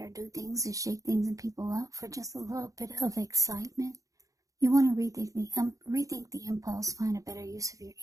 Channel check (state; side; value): late; left; 0.16 ms